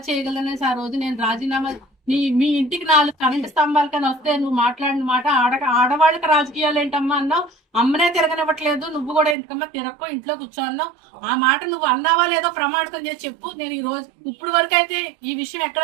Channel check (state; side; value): drops out; left; at 9.3 s